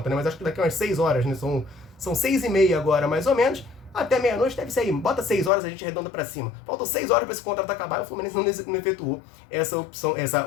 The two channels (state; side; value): drops out; right; at 5.5 s